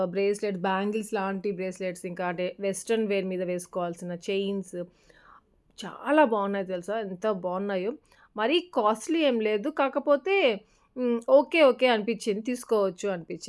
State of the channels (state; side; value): identical; both; correlation 1.00